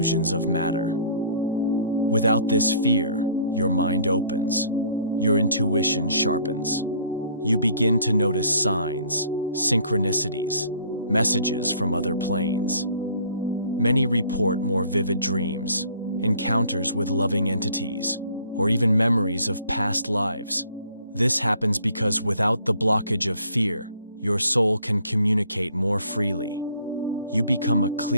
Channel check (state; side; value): inverted; both; correlation -0.57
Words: of matter. Without this fear, your mind opens, your intuition sharpens. You begin to notice signs, synchronicities, messages from other planes. Many report more vivid dreams, encounters with loving entities, or even memories of past lives. This happens because without the blockage of fear, your soul can communicate more freely. You become a